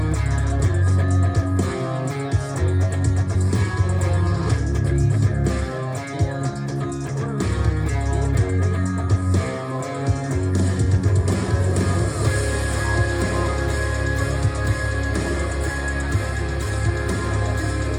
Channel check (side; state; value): both; identical; correlation 1.00